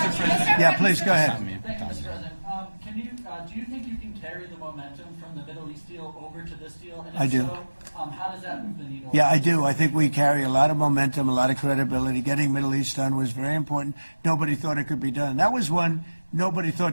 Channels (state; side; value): inverted; both; correlation -1.00